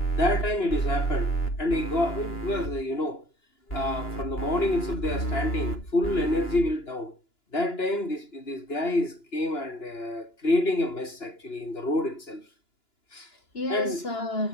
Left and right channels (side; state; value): right; late; 2.9 ms